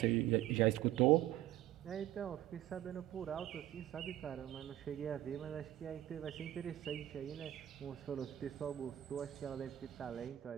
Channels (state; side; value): quieter; left; 13.6 dB